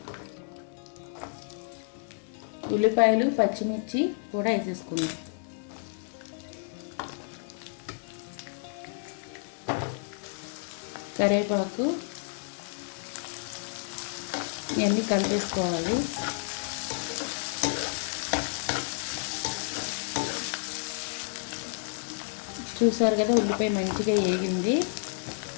ఉల్లిపాయలు, పచ్చిమిర్చి కూడా వేసేసుకుందాం. కరివేపాకు, ఇవన్నీ కలిపేసుకోవాలి. చూసారు కదా, ఉల్లిపాయ మంచిగా వేగింది.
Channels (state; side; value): silent; right; digital silence